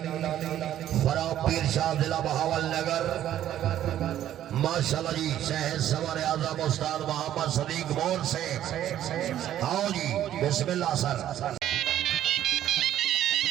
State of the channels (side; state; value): left; quieter; 11.8 dB